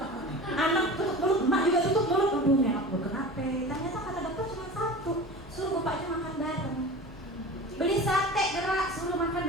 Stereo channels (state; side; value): normal; both; correlation 0.35